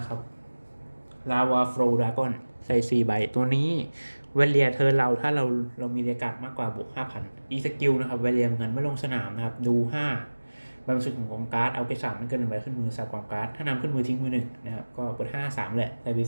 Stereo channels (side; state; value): both; inverted; correlation -1.00